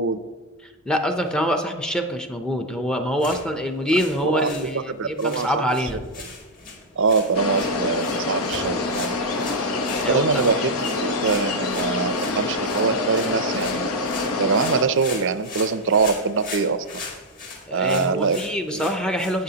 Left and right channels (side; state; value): both; normal; correlation 0.00